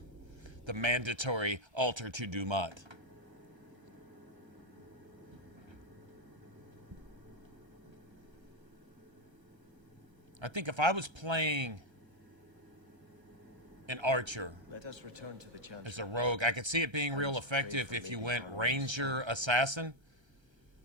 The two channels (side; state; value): left; late; 1.3 ms